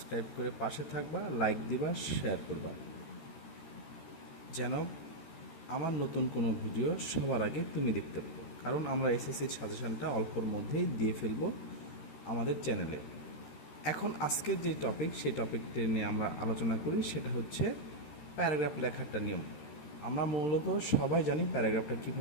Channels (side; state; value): right; late; 13 ms